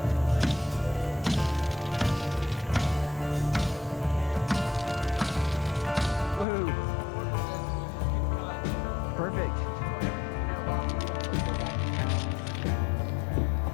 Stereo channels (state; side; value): drops out; right; at 6.5 s